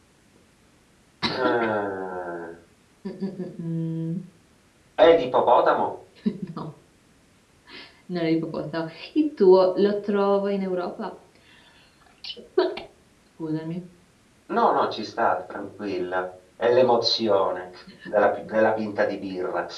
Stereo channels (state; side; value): identical; both; correlation 1.00